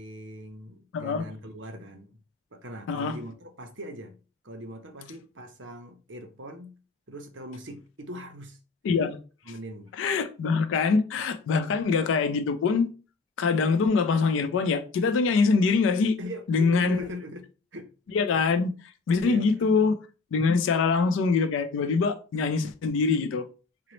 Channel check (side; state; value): right; quieter; 4.2 dB